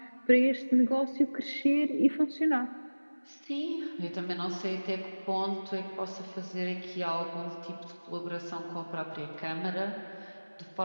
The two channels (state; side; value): inverted; both; correlation -1.00